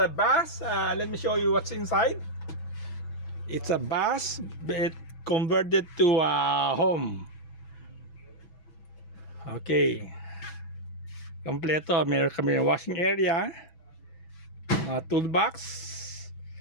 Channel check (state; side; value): late; right; 6.1 ms